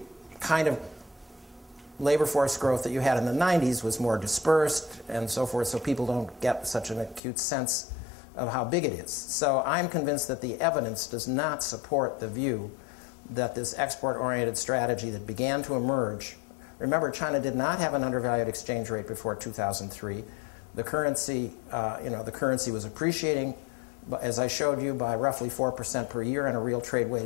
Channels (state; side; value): drops out; right; at 7.2 s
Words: kind of labor force growth that you had in the 90s was more dispersed and so forth, so people don't get such an acute sense of how big it is. So I'm convinced that the evidence does not support the view that this export-oriented strategy that began to emerge. Remember, China did not have an undervalued exchange rate before 2003. The currency was appreciating, as I showed you, by roughly 4% per year on a real